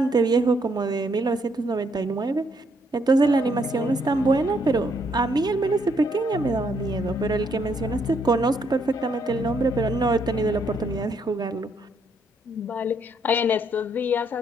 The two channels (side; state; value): both; normal; correlation 0.72